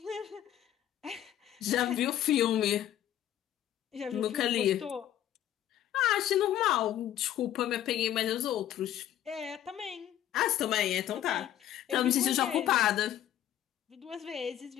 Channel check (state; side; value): quieter; right; 11.7 dB